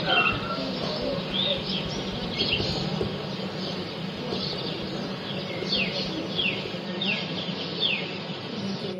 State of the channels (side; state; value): both; identical; correlation 1.00